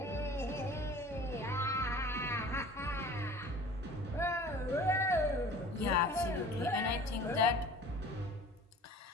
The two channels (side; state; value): both; normal; correlation 0.44